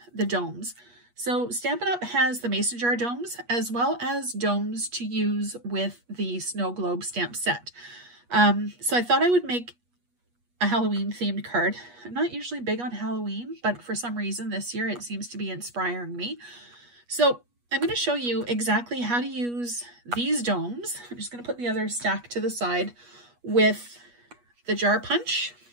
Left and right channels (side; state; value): left; late; 8.3 ms